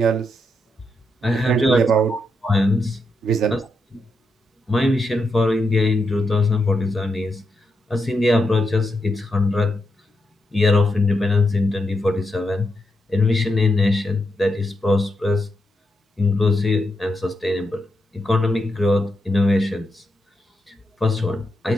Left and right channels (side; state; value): both; normal; correlation 0.83